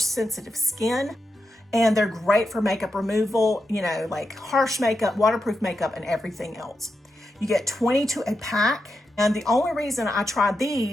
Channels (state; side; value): normal; both; correlation 0.87